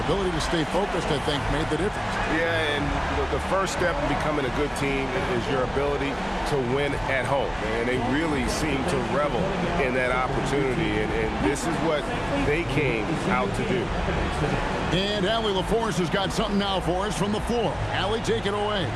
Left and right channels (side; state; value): both; identical; correlation 1.00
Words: ability to stay focused, I think, made the difference. Yeah, and the first step in becoming a good team is your ability to win at home. And they really seem to revel in that opportunity, and this is what they came out to do. And Allie LaForce has got something now for us from the floor. Allie, take it away.